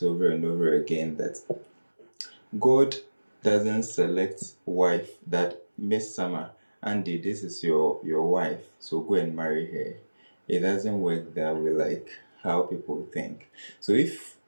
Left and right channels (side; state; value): both; inverted; correlation -1.00